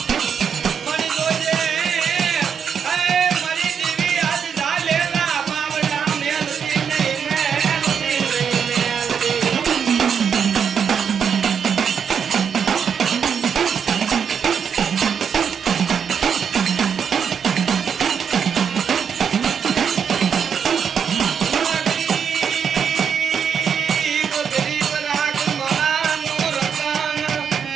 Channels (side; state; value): left; quieter; 7.2 dB